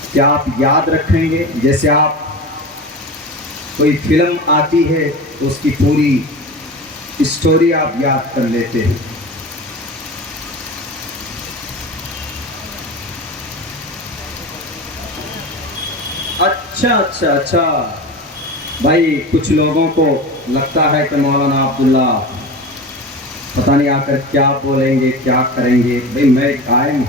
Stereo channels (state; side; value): normal; both; correlation 0.30